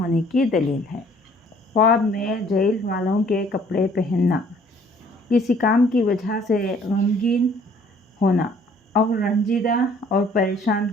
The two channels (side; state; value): both; normal; correlation 0.58